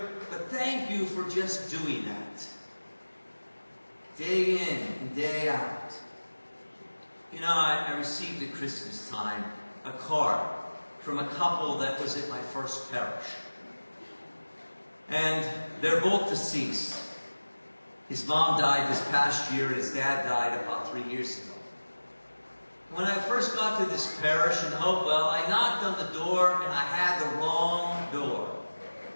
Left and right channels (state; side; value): inverted; both; correlation -1.00